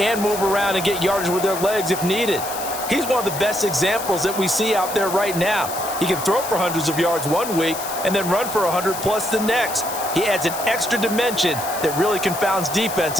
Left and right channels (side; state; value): left; noise; hiss, 9 dB below the sound